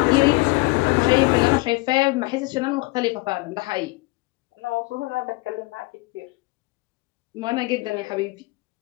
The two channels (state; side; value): quieter; right; 24.2 dB